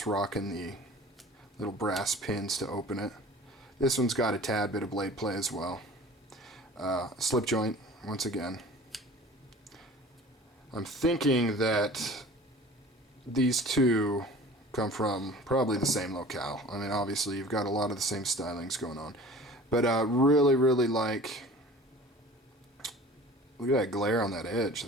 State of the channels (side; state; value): both; normal; correlation 0.43